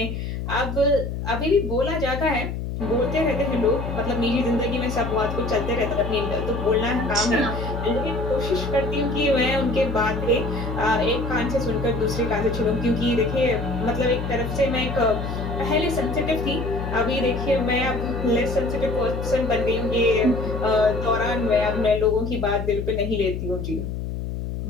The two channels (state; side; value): noise; left; hum, 5 dB below the sound